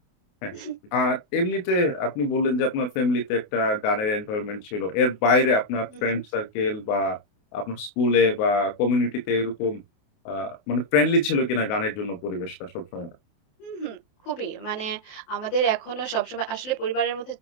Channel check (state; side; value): late; right; 28 ms